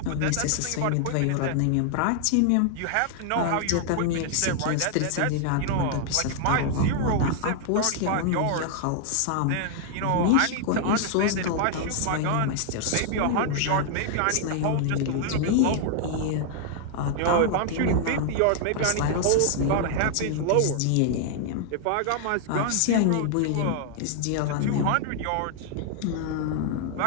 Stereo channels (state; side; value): different; both; correlation 0.00